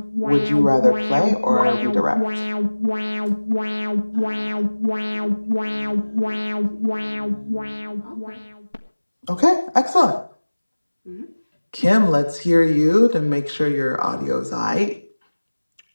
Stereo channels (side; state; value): both; inverted; correlation -1.00